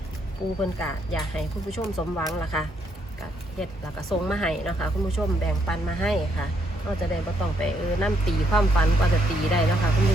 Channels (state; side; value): normal; both; correlation 0.73